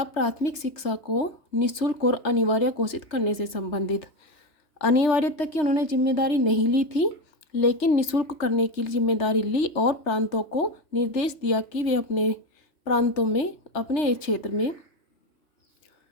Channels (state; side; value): late; right; 3.3 ms